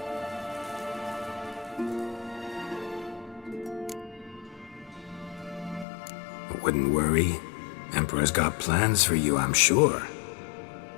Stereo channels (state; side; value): drops out; right; at 5.9 s